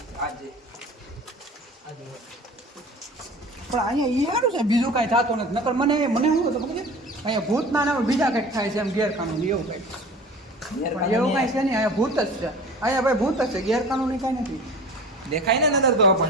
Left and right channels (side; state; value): both; normal; correlation 0.40